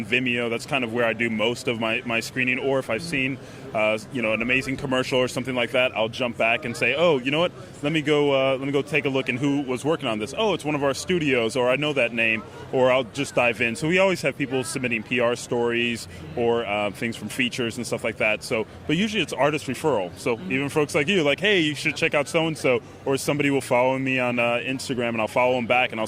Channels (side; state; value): both; identical; correlation 1.00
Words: Vimeo. That's kind of where I do most of my screening. Or if I've seen an amazing commercial or something like that, I'll jump back and say, oh, you know what? Let me go take a look and who was working on this. Oh, it's one of our studios, or I know that name, or I'll just dive in. So we always have people submitting PR stories or things from features and stuff like that. So, but usually it's artist referral. So even folks like you, like, hey, you should check out so-and-so, or somebody will follow me on Instagram and I'll follow them back and I'll